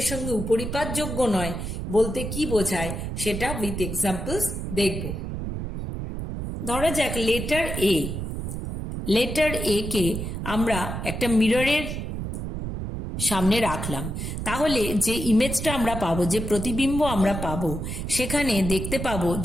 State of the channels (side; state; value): right; noise; rumble, 5 dB below the sound